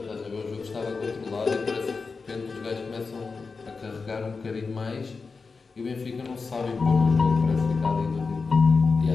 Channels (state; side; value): quieter; right; 4.6 dB